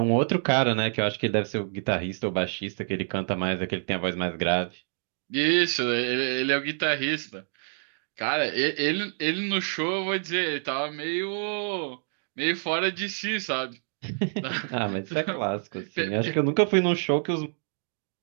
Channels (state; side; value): silent; left; digital silence